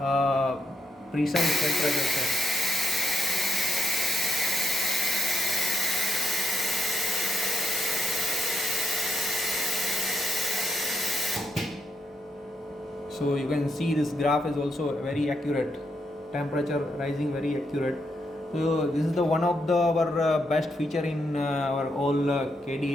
precise temperature set. So you can see this graph is also very accurate, temperature rising very accurate. So this is the one of our best feature in our all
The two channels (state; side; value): normal; both; correlation 0.80